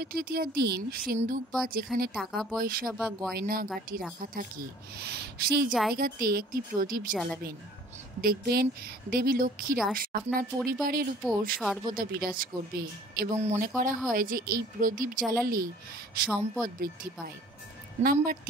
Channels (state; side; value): normal; both; correlation 0.52